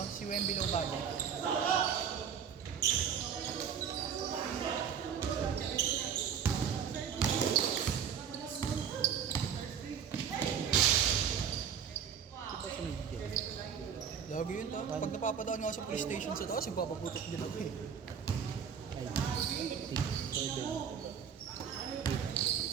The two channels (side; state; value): left; quieter; 7.6 dB